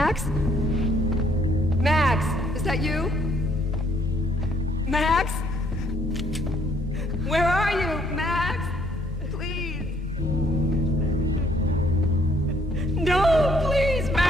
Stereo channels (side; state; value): both; normal; correlation 0.66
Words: Max, is that you? Max? Where are you, Max? Please. No, please,